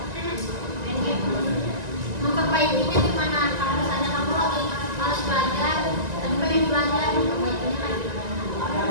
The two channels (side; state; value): left; late; 1.9 ms